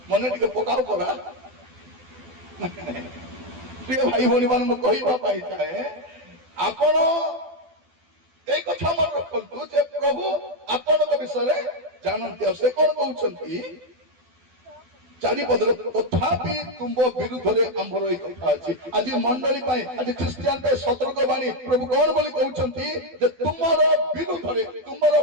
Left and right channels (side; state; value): left; late; 12 ms